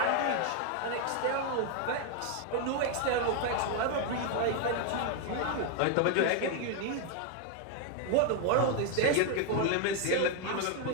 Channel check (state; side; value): different; both; correlation 0.01